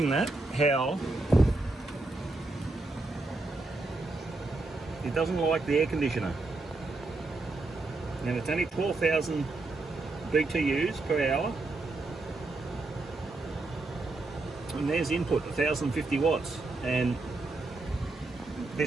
that, how it doesn't like the air conditioner. Now it's only 12,000 BTUs per hour. And there's input, 1050 watts. And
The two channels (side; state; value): left; quieter; 3.2 dB